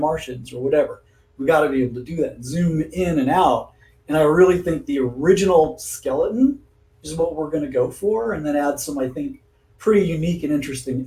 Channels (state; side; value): identical; both; correlation 1.00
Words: or whatever. We got to be able to do that. Zoom in and out. And I really think the original skeleton is what we're going to go for, and then add some, I think, pretty unique and interesting